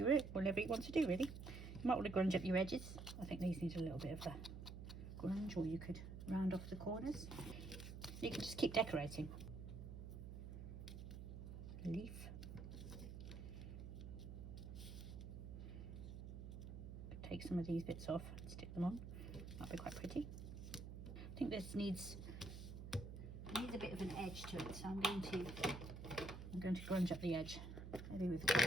want to do, really. You might want to grunge up your edges. I think these need a little bit of a grunge, or you could round off the corners. You can just keep decorating. Leaf. Take some of these bits off and stick them on. That'd be quite pretty. I think this needs a bit of an edge to it, so I'm going to grunge up the edge, maybe with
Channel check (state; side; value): noise; right; hum, 9 dB below the sound